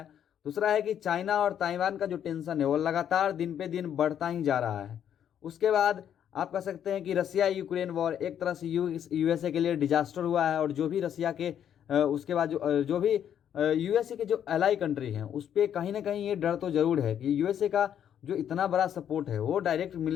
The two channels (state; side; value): quieter; right; 9.5 dB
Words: दूसरा है कि चाइना और ताइवान का जो टेंशन है वो लगातार दिन पे दिन बढ़ता ही जा रहा है। उसके बाद आप कह सकते हैं कि रसिया यूक्रेन वॉर एक तरह से यूएसए के लिए डिजास्टर हुआ है। और जो भी रसिया के उसके बाद जो भी यूएसए के जो एलाई कंट्री हैं उस पर कहीं ना कहीं ये डर तो जरूर है कि यूएसए का जो इतना बड़ा सपोर्ट है वो डायरेक्ट